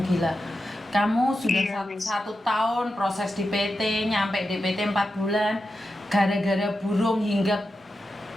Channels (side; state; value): both; normal; correlation 0.90